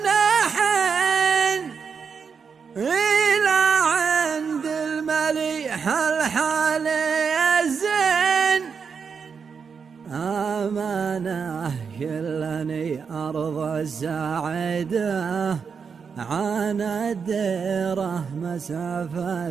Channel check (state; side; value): quieter; left; 6.0 dB